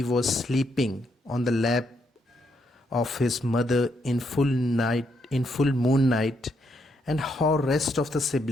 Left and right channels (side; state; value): both; normal; correlation 0.77